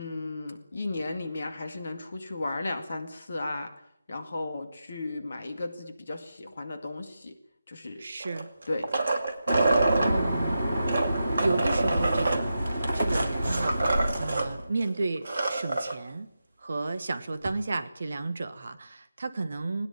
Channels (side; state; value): both; inverted; correlation -0.89